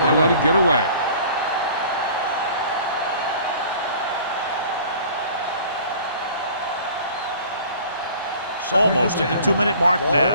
They let it get away. Almost at the 2-minute mark Ball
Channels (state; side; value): inverted; both; correlation -0.48